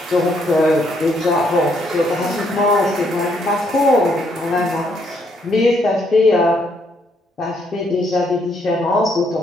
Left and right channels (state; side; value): normal; both; correlation 0.72